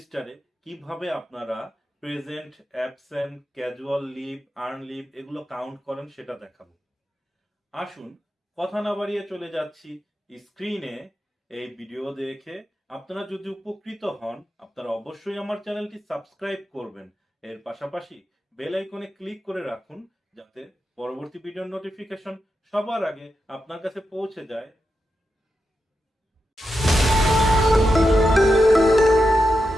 কিভাবে আপনারা present, absent, casual leave, earn leave এগুলো কাউন্ট করেন সেটা দেখাবো। আসুন কথা না বাড়িয়ে চলে যাচ্ছি স্ক্রিনে। এই ভিডিও দেখে আপনারা যদি উপকৃত হন, আপনারা অবশ্যই আমার চ্যানেলটি সাবস্ক্রাইব করবেন। এর পাশাপাশি বেল আইকনে ক্লিক করে রাখুন, যাতে পরবর্তী ভিডিওর নোটিফিকেশন সবার আগে আপনার কাছে পৌঁছে যায়।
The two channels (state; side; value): normal; both; correlation 0.88